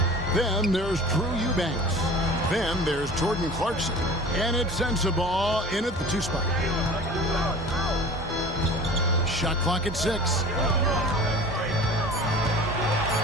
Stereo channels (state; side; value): normal; both; correlation 0.41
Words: Then there's Drew Eubanks. Then there's Jordan Clarkson. And it's Sensabaugh in at the 2 spot. Shot clock at 6.